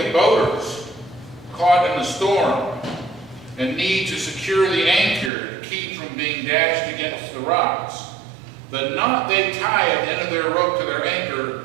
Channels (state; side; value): drops out; left; at 5.3 s